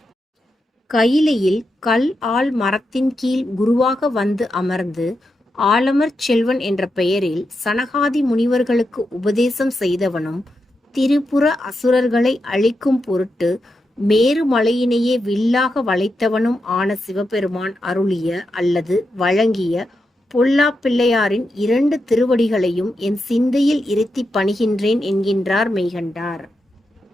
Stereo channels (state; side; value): normal; both; correlation 0.86